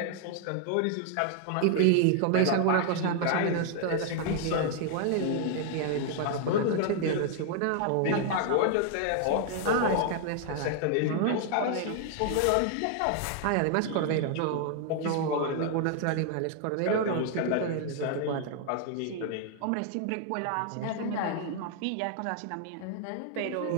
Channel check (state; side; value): different; both; correlation 0.00